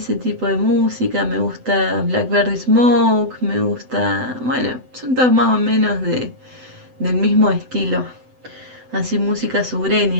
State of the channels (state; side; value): late; left; 7.9 ms